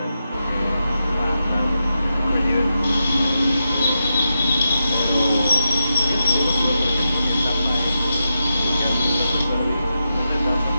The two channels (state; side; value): inverted; both; correlation -0.87